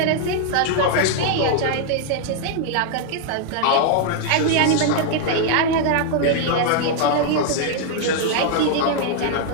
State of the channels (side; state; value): both; different; correlation 0.00